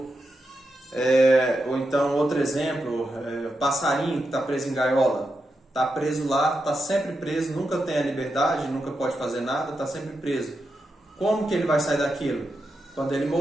Ou então outro exemplo, o passarinho que está preso em gaiola. Está preso lá, está sempre preso, nunca tem a liberdade, nunca pode fazer nada, está sempre preso. Como que ele vai sair daquilo? Quando ele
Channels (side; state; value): both; normal; correlation 0.87